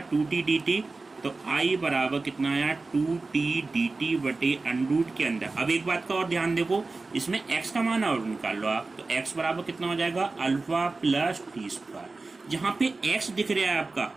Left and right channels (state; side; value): quieter; left; 3.6 dB